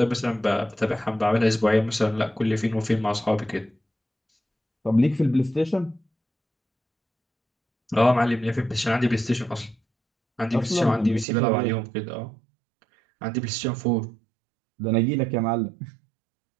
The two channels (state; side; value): drops out; left; at 11.2 s